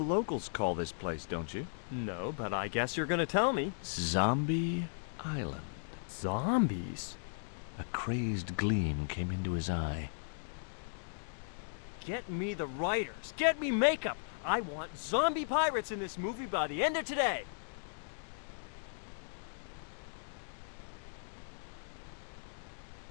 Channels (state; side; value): silent; right; digital silence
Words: locals call this place, don't you? No, but I guess you're gonna tell me. Zombie Island. Zombies? A crazed gleam came into his eye. Get me the writers. Get me makeup. I want zombie pirates in this movie by the end of today.